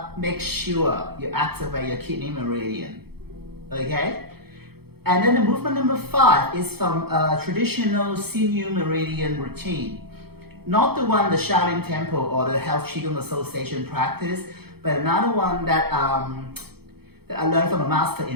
make sure you activate your kidney meridian, okay? And then the movement number 5 is from a traditional senior Meridian routine. Not the one the Shaolin Temple or the Health Qigong Association practice, but another one that I learned from a master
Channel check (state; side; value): late; left; 0.96 ms